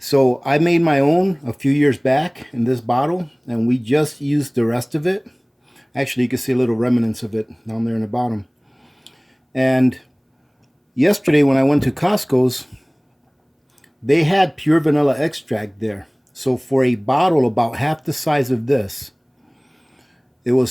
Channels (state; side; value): identical; both; correlation 1.00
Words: so I made my own a few years back in this bottle, and we just used the rest of it. Actually, you can see a little remnants of it down there in the bottom. And yesterday when I went to Costco's, they had pure vanilla extract there. So for a bottle about half the size of this, it